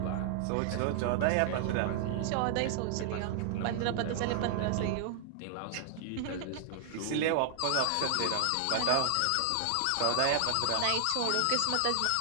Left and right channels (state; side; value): different; both; correlation 0.00